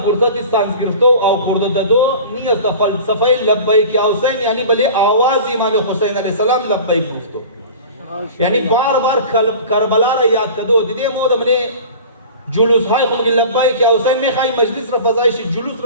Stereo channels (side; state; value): both; inverted; correlation -0.38